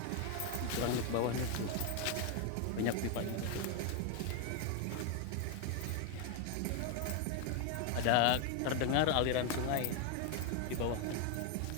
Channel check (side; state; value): both; different; correlation 0.01